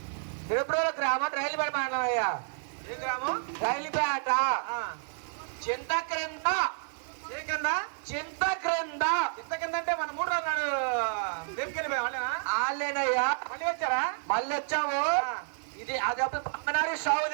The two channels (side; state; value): left; silent; digital silence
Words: తిరుపతిలో గ్రామం, రైలుపేట మండలం అయ్యా. ఏ గ్రామం? రైలుపేట. చింత క్రింద. ఏ కింద? చింత క్రింద. ఇంత కింద అంటే మన 3 రోజులు నాడు రేపుకెళ్ళిపోయా వాళ్ళేనా? వాళ్ళేనయ్యా. మళ్ళీ వచ్చారా? మళ్ళీ వచ్చాము. ఇది అది పక్కనారి